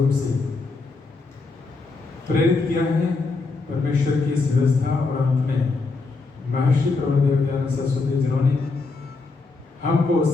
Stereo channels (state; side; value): quieter; right; 3.9 dB